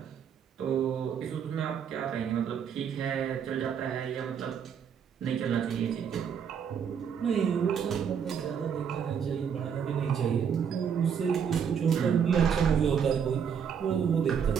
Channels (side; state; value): left; quieter; 7.5 dB